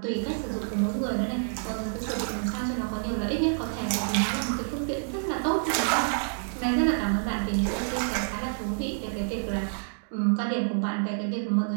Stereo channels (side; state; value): left; silent; digital silence